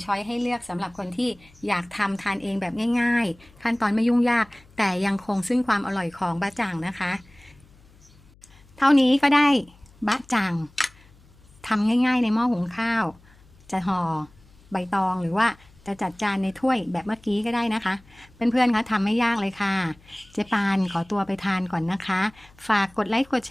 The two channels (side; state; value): left; noise; hum, 27 dB below the sound